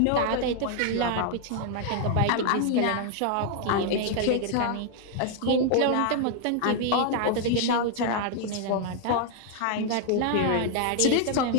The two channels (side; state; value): both; different; correlation 0.00